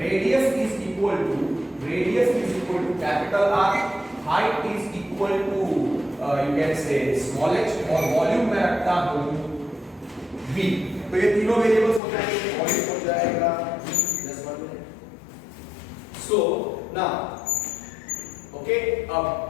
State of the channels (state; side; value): drops out; right; at 12.0 s